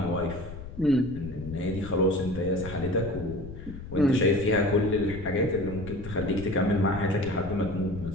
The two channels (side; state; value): left; noise; rumble, 12 dB below the sound